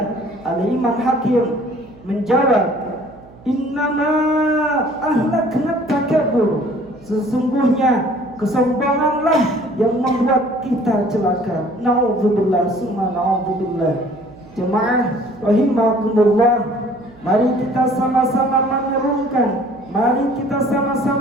Al-Imam Hakim menjawab, "Innama ahlakna takabbur." Sesungguhnya kesombonganlah yang membuat kita celaka. Na'udzubillah summa na'udzubillah. Jemaah rahimakumullah, mari kita sama-sama merenungkan, mari kita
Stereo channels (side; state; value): right; noise; hum, 23 dB below the sound